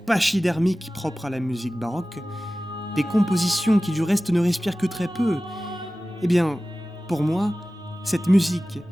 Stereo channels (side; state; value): both; normal; correlation 0.96